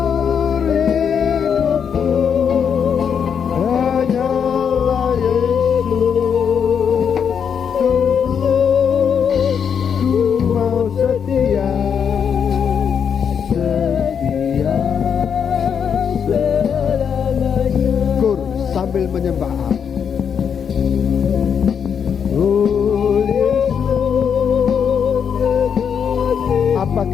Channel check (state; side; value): quieter; right; 7.3 dB